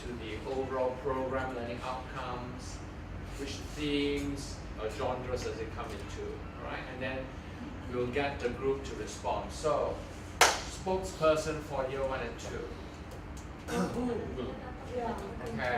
the overall program learning outcomes, which themes or genres does it come into, right? And then we'll get the group to respond. So, spokesperson for year 1 and 2.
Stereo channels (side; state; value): both; identical; correlation 1.00